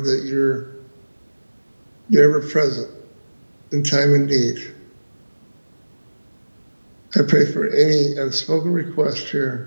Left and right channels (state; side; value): inverted; both; correlation -1.00